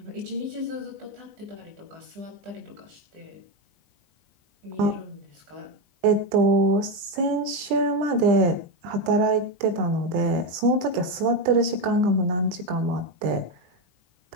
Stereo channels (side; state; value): left; late; 20 ms